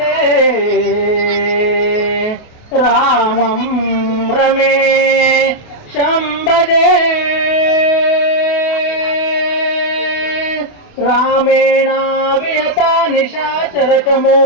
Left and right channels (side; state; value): right; late; 28 ms